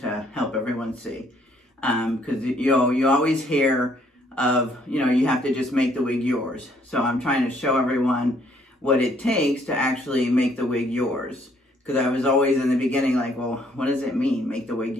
help everyone see. Because you always hear of, you have to just make the wig yours. So I'm trying to show everyone what it takes to actually make the wig yours. Because I was always in the beginning like, well, what does it mean, make the wig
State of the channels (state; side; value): normal; both; correlation 0.66